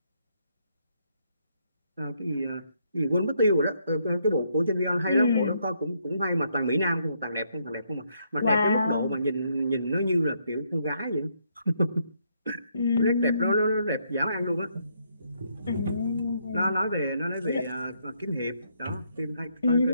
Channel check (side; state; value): both; inverted; correlation -0.74